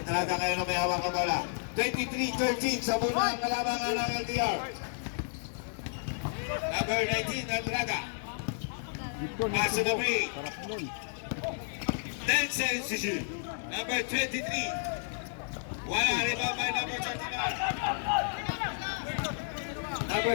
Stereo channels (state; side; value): silent; right; 57 dB below the other